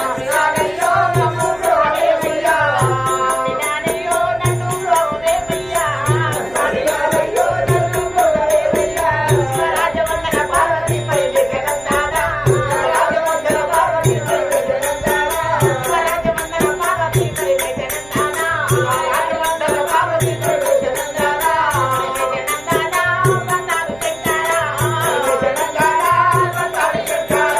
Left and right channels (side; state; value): right; noise; hum, 23 dB below the sound